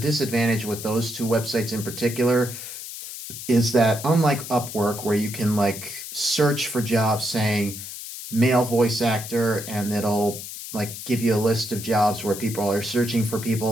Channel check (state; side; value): noise; left; hiss, 10 dB below the sound